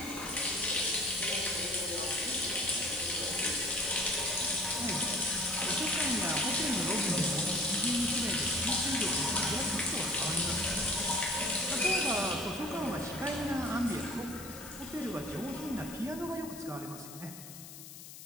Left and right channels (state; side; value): noise; left; hiss, 14 dB below the sound